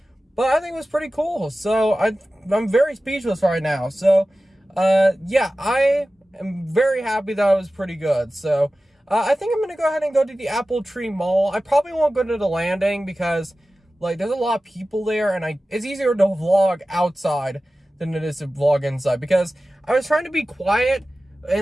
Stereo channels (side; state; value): both; normal; correlation 0.96